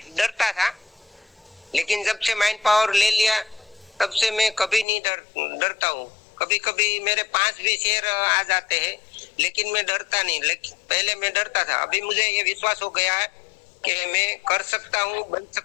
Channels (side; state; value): right; drops out; at 4.9 s